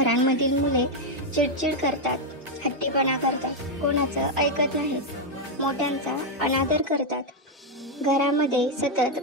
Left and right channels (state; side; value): normal; both; correlation 0.02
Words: मुले चिडचिड करतात, हट्टीपणा करतात, कोणाचं ऐकत नाहीत, मोठ्यांचा अनादर करतात. घरामध्ये सतत